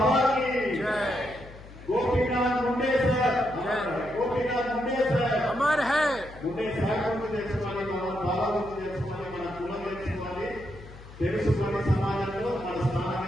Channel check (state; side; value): noise; left; hum, 17 dB below the sound